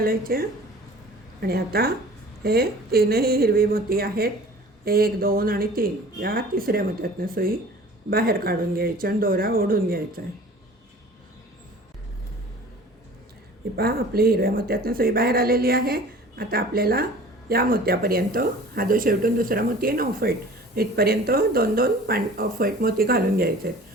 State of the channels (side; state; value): both; normal; correlation 0.45